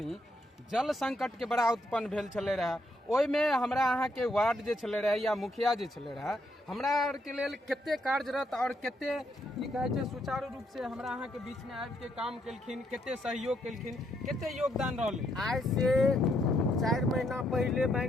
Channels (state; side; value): normal; both; correlation 0.75